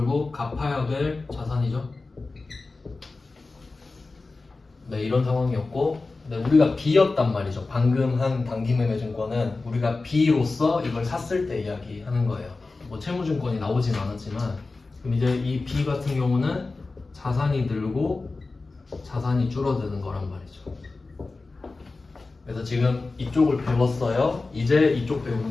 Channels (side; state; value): right; quieter; 3.6 dB